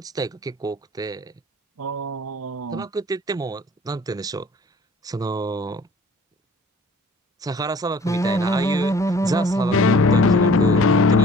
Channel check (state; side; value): normal; both; correlation 0.51